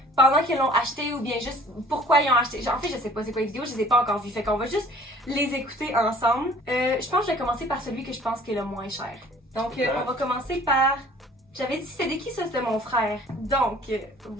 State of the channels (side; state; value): both; normal; correlation 0.51